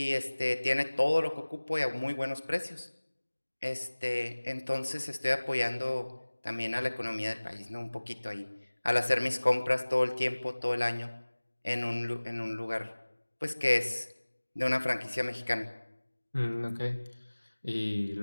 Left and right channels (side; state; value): both; inverted; correlation -1.00